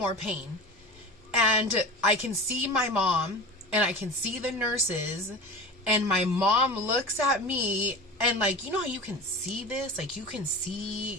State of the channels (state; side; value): normal; both; correlation 0.32